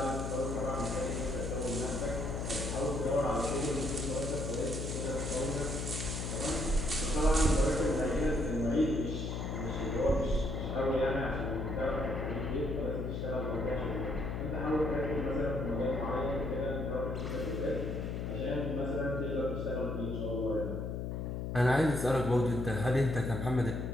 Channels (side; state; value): left; noise; hum, 3 dB below the sound